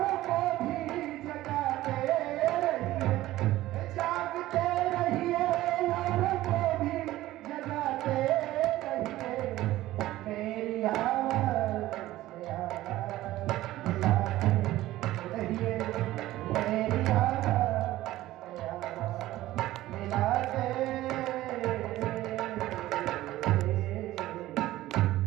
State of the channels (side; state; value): left; quieter; 15.8 dB